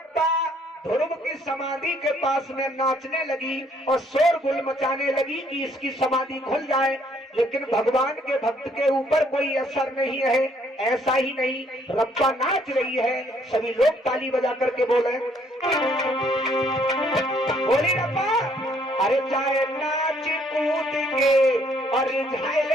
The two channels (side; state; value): both; normal; correlation 0.65